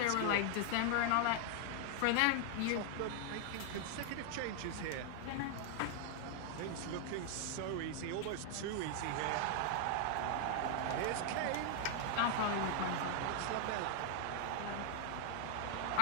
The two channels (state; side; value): different; both; correlation 0.00